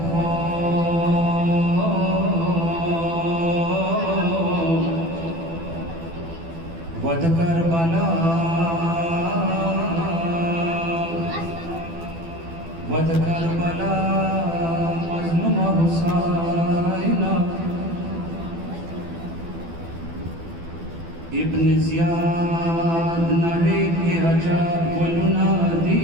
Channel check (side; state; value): left; late; 12 ms